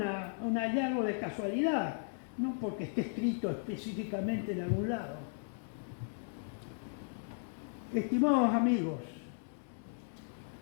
hallazgo de casualidad, no porque esté escrito específicamente en algún lado. Estimados amigos,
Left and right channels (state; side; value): silent; right; digital silence